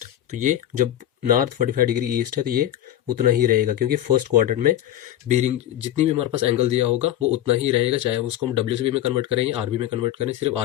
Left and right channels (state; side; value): quieter; right; 12.4 dB